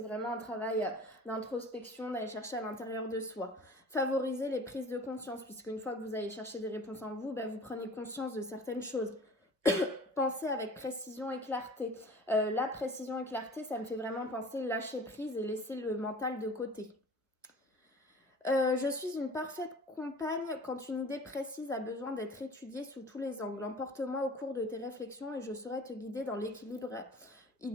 un travail d'introspection, d'aller chercher à l'intérieur de soi. Favoriser les prises de conscience, puisque une fois que vous allez chercher des réponses en vous, vous prenez conscience de certaines choses. Pensez avec précision et clarté. La précision et clarté, ça me fait vraiment penser lâcher prise et laisser le mental de côté. Je suis une parfaite compagne quand une idée précise a besoin d'être étudiée sous tous les angles. Emporte-moi au cours de tes réflexions et je saurai te guider dans l'équilibre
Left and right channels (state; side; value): normal; both; correlation 0.44